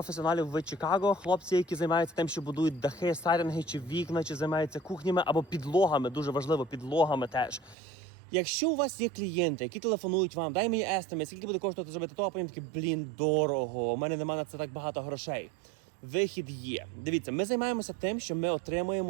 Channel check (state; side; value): drops out; left; at 7.8 s